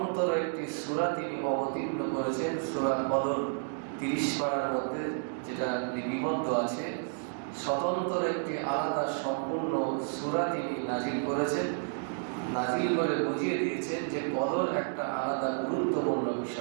একটি সূরা তিনি অবতীর্ণ করেছেন, সূরা কদর 30 পারার মধ্যে যেটা লিপিবদ্ধ আছে। স্বতন্ত্র একটি আলাদা সম্পূর্ণ সূরা তিনি নাজিল করেছেন, নাজিল করে বুঝিয়ে দিয়েছেন যে কদর একটা আলাদা গুরুত্বপূর্ণ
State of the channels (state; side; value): silent; left; digital silence